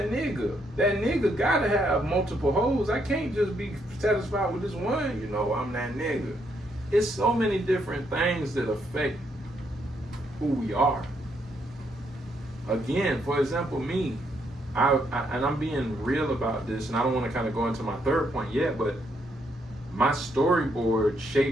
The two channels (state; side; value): normal; both; correlation 0.75